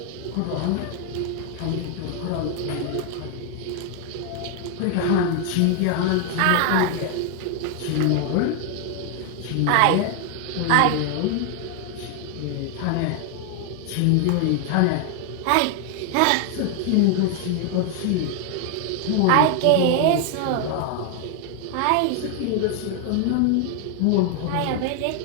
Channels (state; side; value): different; both; correlation 0.00